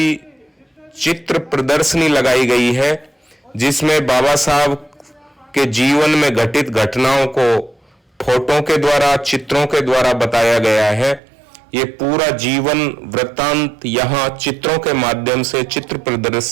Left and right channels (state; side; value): drops out; left; at 11.2 s